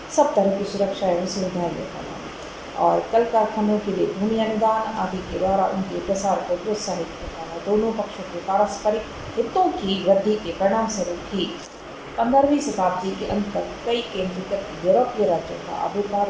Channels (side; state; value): both; identical; correlation 1.00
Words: सब तरह की सुरक्षा एवं सुविधाएं देता था और कल कारखानों के लिए भूमि अनुदान आदि के द्वारा उनके प्रसार को प्रोत्साहित करता था। दोनों पक्षों के पारस्परिक हितों की वृद्धि के परिणाम स्वरूप ही 15वीं शताब्दी के अंत तक कई केंद्रीकृत यूरोपीय राज्यों का आविर्भाव